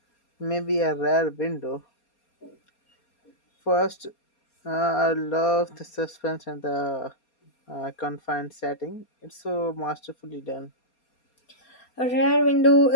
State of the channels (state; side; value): late; right; 4.3 ms